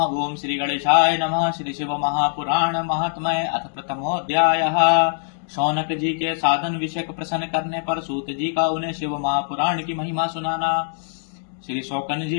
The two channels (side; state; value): right; silent; 64 dB below the other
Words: ओम श्री गणेशाय नमः। श्री शिव महापुराण महात्म्य अथ प्रथमोऽध्यायः। शौनक जी के साधन विषय प्रश्न करने पर सूत जी का उन्हें शिव महापुराण की महिमा सुनाना। श्री शौकन